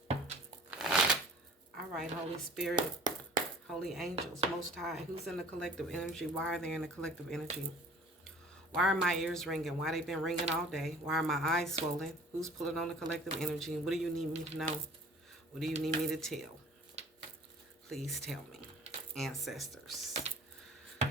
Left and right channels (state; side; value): normal; both; correlation 0.48